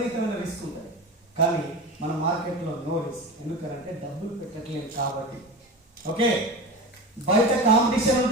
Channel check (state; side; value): normal; both; correlation 0.27